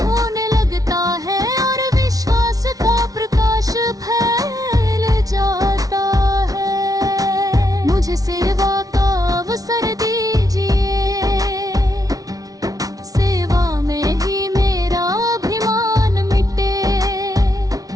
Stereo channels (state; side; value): late; left; 0.18 ms